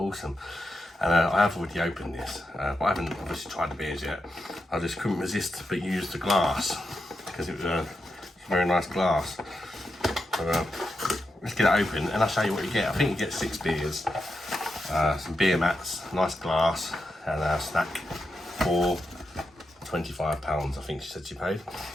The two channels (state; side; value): normal; both; correlation 0.87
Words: And I have already opened this, but I haven't obviously tried the beers yet. I just couldn't resist but use the glass, because it was a very nice glass. So let's get it open and I'll show you what you get. I think you get 6 beers, some beer mats, nice glass, and a snack for £25, I think she said she paid.